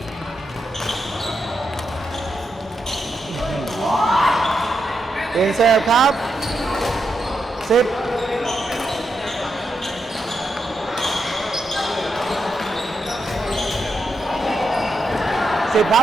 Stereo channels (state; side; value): normal; both; correlation 0.84